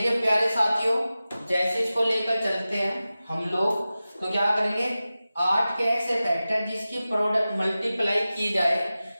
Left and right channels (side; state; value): both; inverted; correlation -0.95